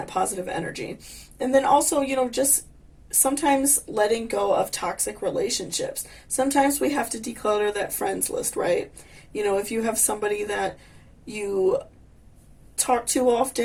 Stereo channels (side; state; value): both; identical; correlation 1.00